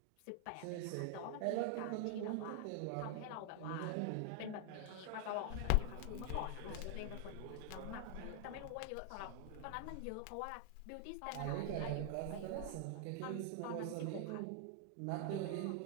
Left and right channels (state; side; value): different; both; correlation 0.00